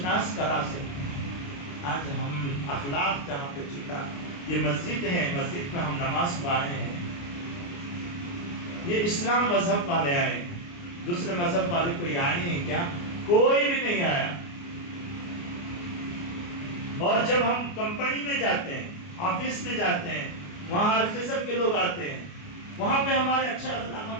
کرا سکتے ہیں. آج ہم اخلاق جہاں پہ چھوٹا، یہ مسجد ہے، مسجد میں ہم نماز کو آئے ہیں، یہ اسلام مذہب والے آئے ہیں، دوسرے مذہب والے کوئی آئے ہیں کیا؟ کوئی بھی نہیں آیا. اور جب ہم کمپنی میں جاتے ہیں، آفس میں جاتے ہیں، وہاں ہر قسم کے لوگ آتے ہیں، وہاں پہ ہمارے اچھا اخلاق ہم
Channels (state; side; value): late; right; 29 ms